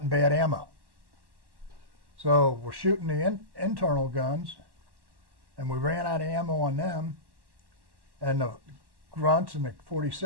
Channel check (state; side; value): late; left; 1.1 ms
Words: bad ammo. So we're shooting the internal guns, and we ran out of ammo on them. And the grunts and the